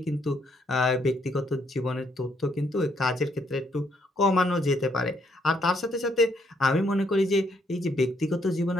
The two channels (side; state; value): both; normal; correlation 0.71